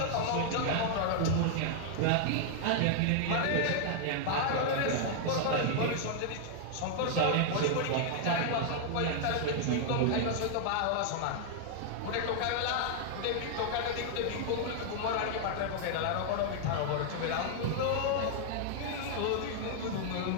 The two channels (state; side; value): different; both; correlation -0.01